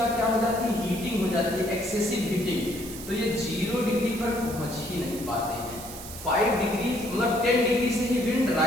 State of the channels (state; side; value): noise; right; hiss, 12 dB below the sound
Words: क्या हो जाती है, हीटिंग हो जाती है, एक्सेसिव हीटिंग। तो ये 0 डिग्री पर पहुंच ही नहीं पाते हैं। 5 डिग्री मतलब 10 डिग्री से ही विंड